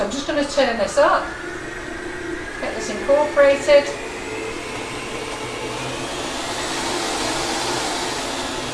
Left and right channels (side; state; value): both; identical; correlation 1.00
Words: I'm just going to turn this up, get this incorporated.